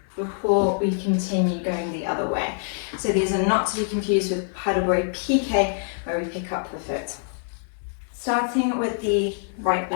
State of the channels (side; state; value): right; silent; digital silence